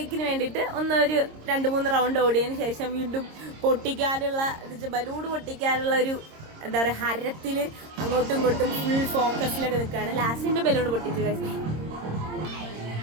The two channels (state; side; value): late; left; 26 ms